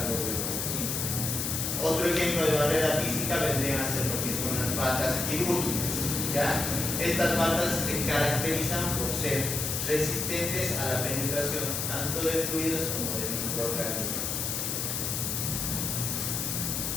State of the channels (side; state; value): left; noise; hiss, 1 dB below the sound